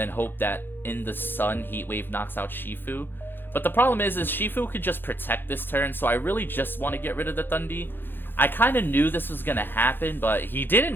hope that in the sun, Heat Wave knocks out Shifu? But the problem is Shifu could just protect this turn, so I really just want to get rid of the Thundee. I kind of knew this was going to happen, but he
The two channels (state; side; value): late; right; 0.099 ms